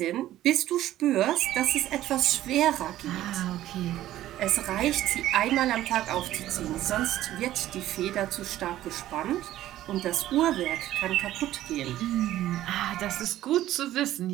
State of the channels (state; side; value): quieter; left; 13.8 dB